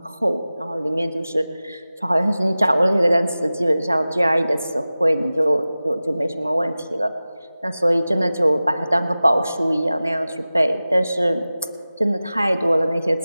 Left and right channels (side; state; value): both; inverted; correlation -0.96